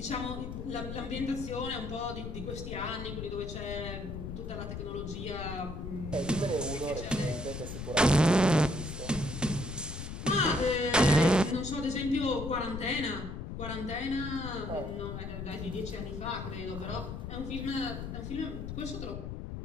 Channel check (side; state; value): left; noise; rumble, 7 dB below the sound